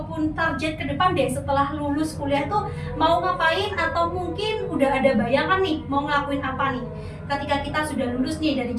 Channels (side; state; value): both; identical; correlation 1.00